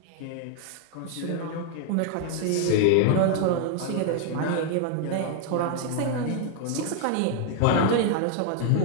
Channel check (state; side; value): different; both; correlation 0.00